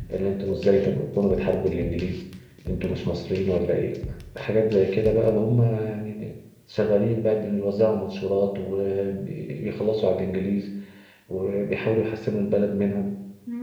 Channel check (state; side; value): identical; both; correlation 1.00